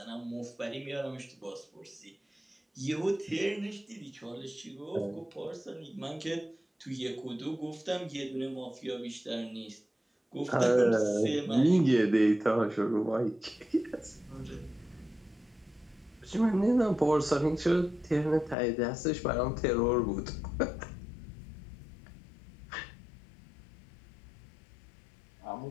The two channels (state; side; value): drops out; right; at 18.6 s